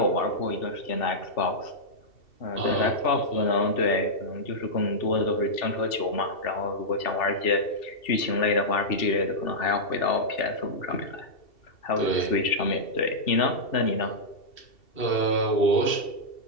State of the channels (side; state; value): right; late; 2.7 ms